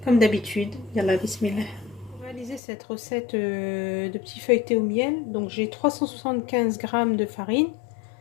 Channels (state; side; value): drops out; right; at 2.6 s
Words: comme d'habitude, yallah bismillah. Pour réaliser cette recette de petits feuilletés au miel, donc j'ai 375 g de farine